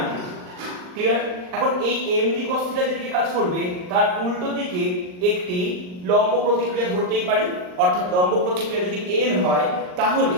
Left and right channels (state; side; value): late; left; 39 ms